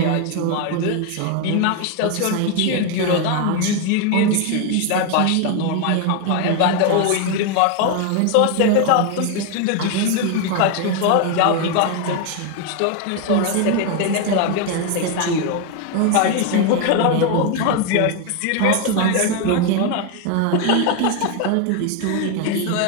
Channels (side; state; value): both; different; correlation 0.01